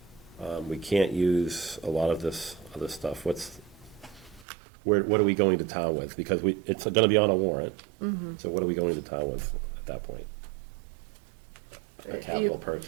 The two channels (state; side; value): drops out; left; at 4.5 s